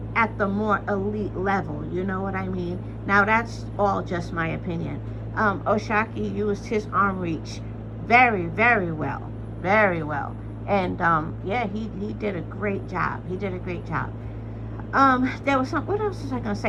at the more elite level. You know what I mean? Now, that's all just my opinion. Oshaki used his arm reach very, very well. Very well. And, yeah, he did a great job. He did a great job. There was what else was I going to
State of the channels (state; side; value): identical; both; correlation 1.00